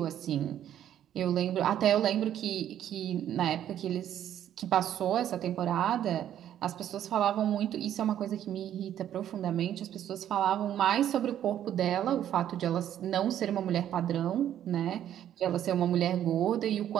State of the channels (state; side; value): quieter; left; 10.8 dB